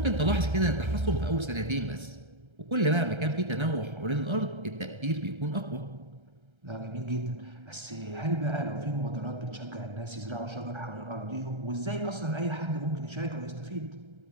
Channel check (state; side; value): late; left; 1.3 ms